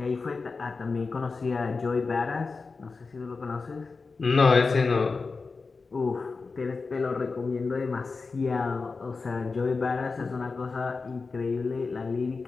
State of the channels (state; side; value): quieter; right; 4.3 dB